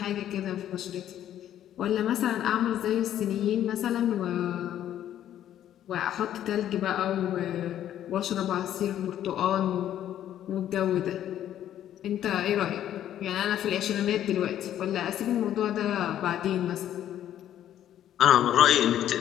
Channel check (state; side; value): quieter; right; 11.3 dB